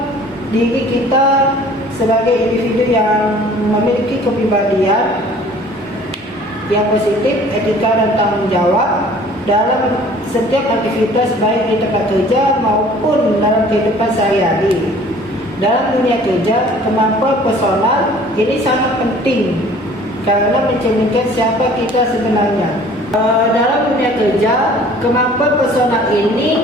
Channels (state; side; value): normal; both; correlation 0.51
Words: diri kita sebagai individu yang memiliki kepribadian yang positif, etika dan tanggung jawab dalam setiap aktivitas, baik di tempat kerja maupun dalam kehidupan sehari-hari. Dalam dunia kerja, kemampuan personal ini sangat penting karena mencerminkan siapa kita sebenarnya. Dalam dunia kerja, kemampuan personal